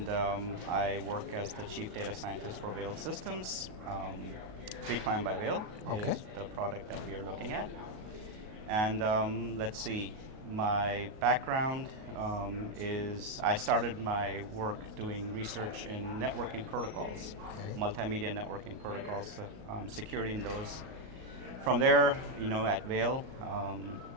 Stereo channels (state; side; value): late; left; 37 ms